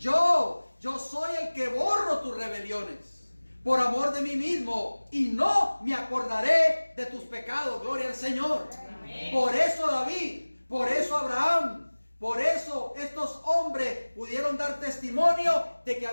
soy el que borro tus rebeliones por amor de mí mismo, y no me acordaré de tus pecados. Gloria al Señor. Amén. Por eso David, por eso Abraham, por eso estos hombres pudieron dar testimonio de que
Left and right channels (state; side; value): inverted; both; correlation -1.00